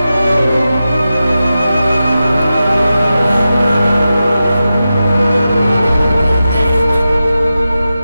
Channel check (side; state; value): both; inverted; correlation -0.92